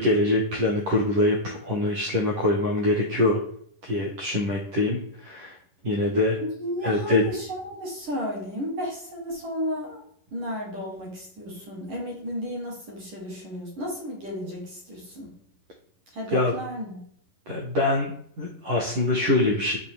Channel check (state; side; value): late; left; 10 ms